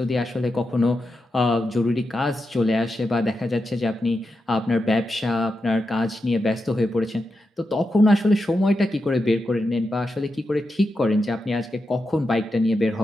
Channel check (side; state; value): both; normal; correlation 0.88